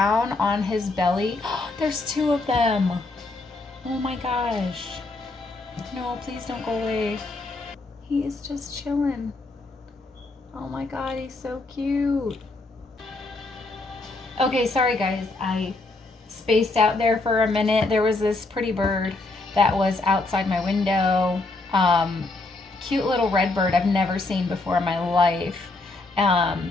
on his belly. There's two of them. Oh my gosh. No, please don't go away. He is just chilling. Oh my god, he's so cute. Okay, sorry guys. I spaced out there for a minute. There was this pretty bird that was outside my window. Cute little red bird I've never seen before in my life.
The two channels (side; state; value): right; quieter; 3.2 dB